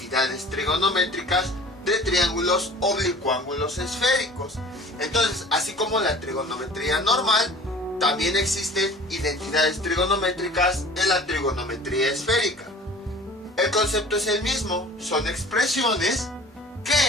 trigonométricas de triángulos oblicuángulos esféricos. Entonces, así como la trigonometría normal, también existen identidades trigonométricas en la trigonometría esférica. El concepto es el mismo, son expresiones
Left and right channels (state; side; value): normal; both; correlation 0.45